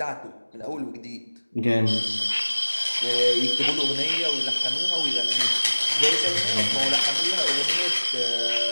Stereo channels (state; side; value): inverted; both; correlation -1.00